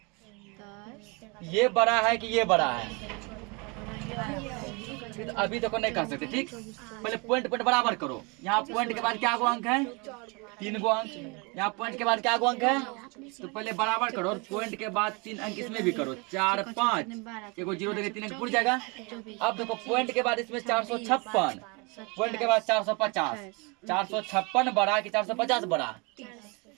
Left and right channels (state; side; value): quieter; left; 30.0 dB